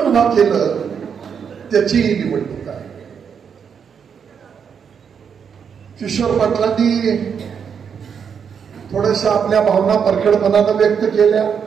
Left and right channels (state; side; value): quieter; left; 7.0 dB